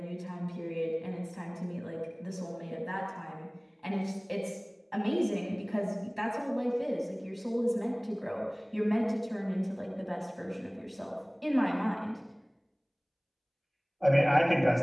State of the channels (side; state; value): both; identical; correlation 1.00